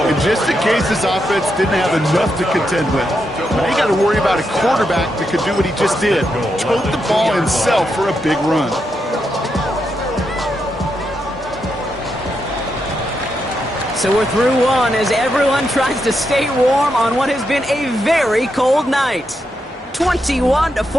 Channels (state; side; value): normal; both; correlation 0.83